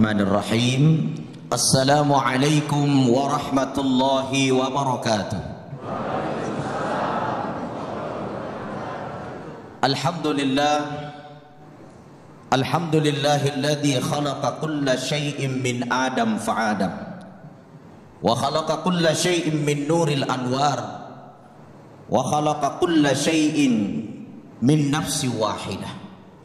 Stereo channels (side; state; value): both; identical; correlation 1.00